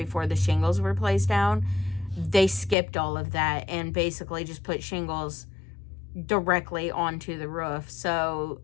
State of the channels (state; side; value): drops out; right; at 2.8 s